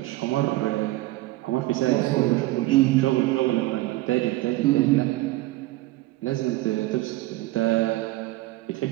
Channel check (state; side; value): quieter; left; 18.4 dB